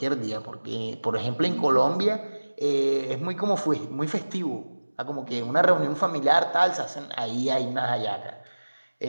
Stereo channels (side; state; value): both; inverted; correlation -1.00